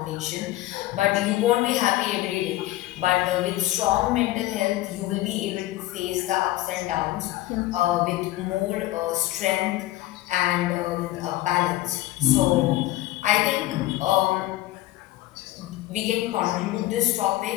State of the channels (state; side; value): quieter; right; 16.6 dB